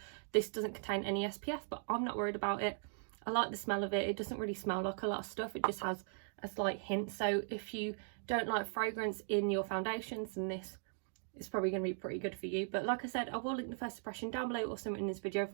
this doesn't contain any SPF, but I'm not worried about it. I like the smell of it. It doesn't really smell like a lot of stuff. It just has a slight hint. So if you don't like fragrance in your foundations, then this is probably going to be pretty good for you. But like I said, I will link the first impression down below or something in this video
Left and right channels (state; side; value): silent; left; digital silence